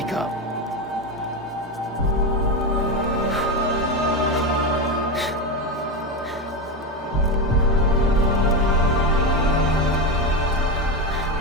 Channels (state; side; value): normal; both; correlation 0.15